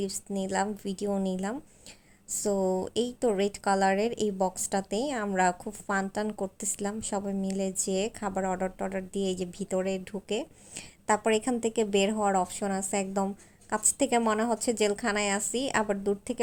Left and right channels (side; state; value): both; identical; correlation 1.00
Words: নিলাম, ভিডিও নিলাম। সো এই তো রেড কালারের এই বক্সটাতেই আমরা খুব ফান টান করতেছিলাম সবাই মিলে, যে খাবার অর্ডার টর্ডার দিয়ে এই যে ভিতরে ঢুকে তারপর এখান থেকে বের হওয়ার অপশন আছে। একদম কাছ থেকে মনে হচ্ছে জেলখানায় আছি, আবার দূর থেকে